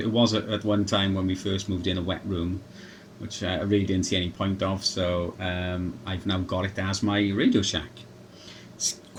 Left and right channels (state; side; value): identical; both; correlation 1.00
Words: at one time when we first moved in a wet room, which I really didn't see any point of. So I've now got it as my Radio Shack. It's